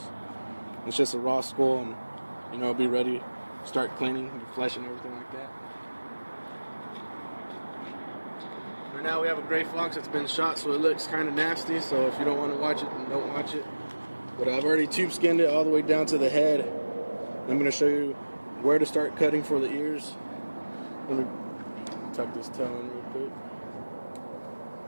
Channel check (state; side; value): inverted; both; correlation -1.00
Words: It's just a raw skull, and you know, it'll be ready to start cleaning the flesh and everything like that. Right now we have a gray fox that's been shot, so it looks kind of nasty, so if you don't want to watch it, then don't watch it. But I've already tube skinned it all the way down to the head. I'm going to show you where to start cutting for the ears. Let me tuck this tail in real quick.